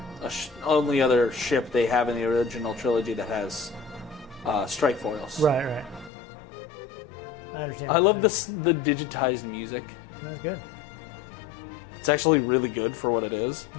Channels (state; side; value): drops out; right; at 6.1 s